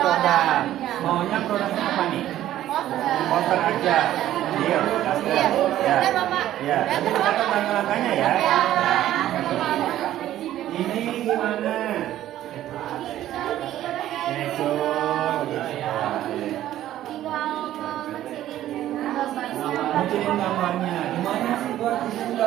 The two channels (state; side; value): quieter; left; 13.0 dB